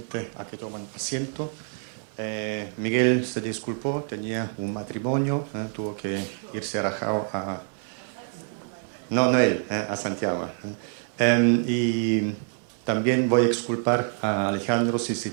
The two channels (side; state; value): left; silent; 59 dB below the other